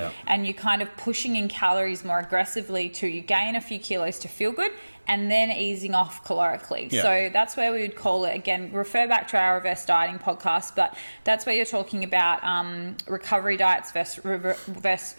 And you're kind of pushing in calories more aggressively to you gain a few kilos to feel good and then easing off calorically. So that's where we would call it, again, refer back to our reverse dieting podcast, but that's where you're talking about recovery diets versus reverse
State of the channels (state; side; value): inverted; both; correlation -1.00